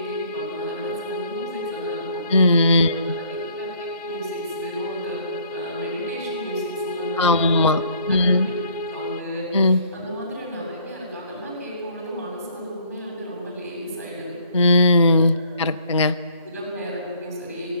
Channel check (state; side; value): inverted; both; correlation -0.60